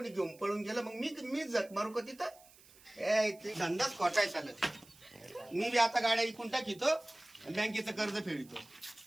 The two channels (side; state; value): right; noise; hiss, 24 dB below the sound